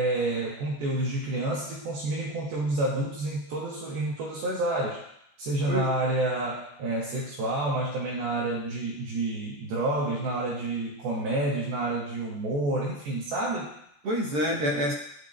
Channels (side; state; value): left; late; 14 ms